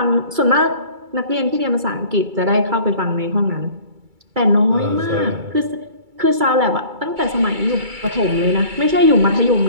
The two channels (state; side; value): late; left; 2.3 ms